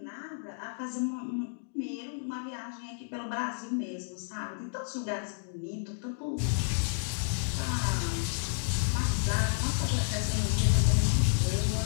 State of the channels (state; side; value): silent; right; digital silence